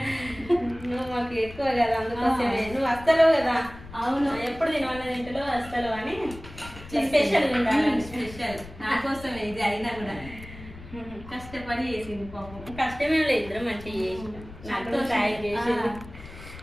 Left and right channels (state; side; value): noise; left; rumble, 16 dB below the sound